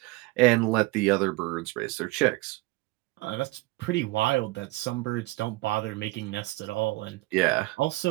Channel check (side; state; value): left; quieter; 21.1 dB